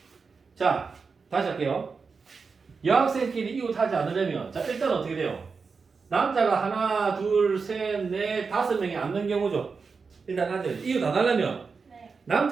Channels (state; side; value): quieter; left; 5.0 dB